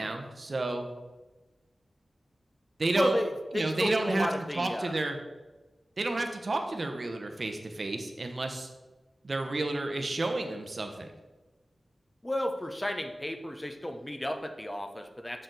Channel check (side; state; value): both; normal; correlation 0.96